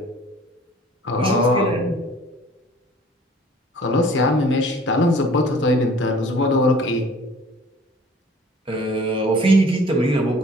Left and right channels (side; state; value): both; normal; correlation 0.51